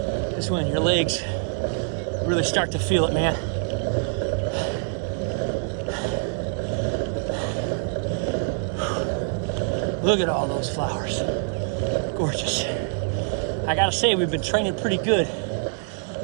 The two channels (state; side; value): silent; left; 56 dB below the other